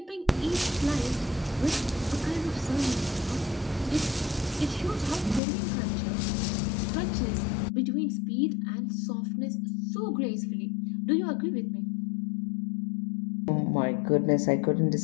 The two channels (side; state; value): right; drops out; at 5.4 s